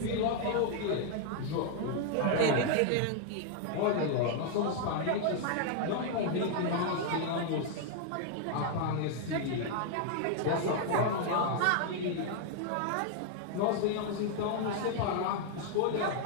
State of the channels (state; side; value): different; both; correlation 0.00